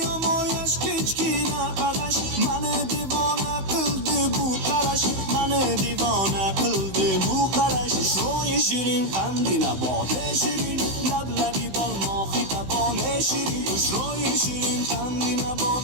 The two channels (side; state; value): left; late; 16 ms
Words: و مویش کچکی نقدش من دیوانه قلده بو قرش من دیوانه قلده بو قرش روی شیرین قندی نبات شیرین لب لبی بال ماهی تبان شیرین روی شیرین قندی